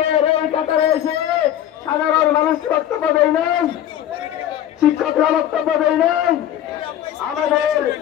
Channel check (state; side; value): quieter; right; 11.4 dB